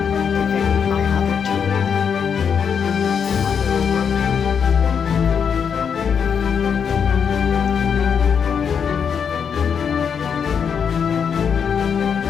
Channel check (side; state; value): right; quieter; 7.0 dB